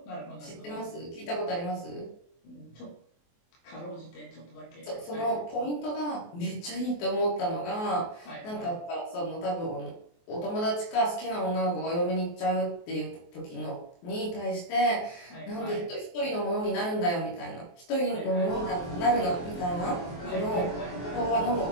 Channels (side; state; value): right; late; 23 ms